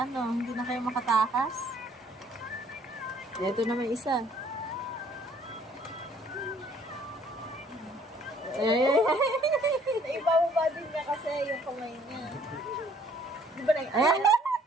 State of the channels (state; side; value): normal; both; correlation 0.60